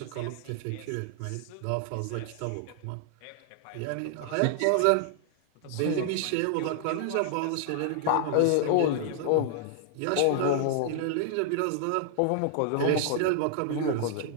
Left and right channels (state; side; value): different; both; correlation -0.01